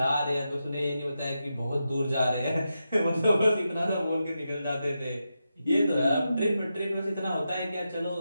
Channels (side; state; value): both; inverted; correlation -0.88